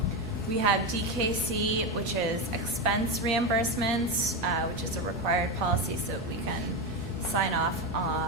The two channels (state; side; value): normal; both; correlation 0.14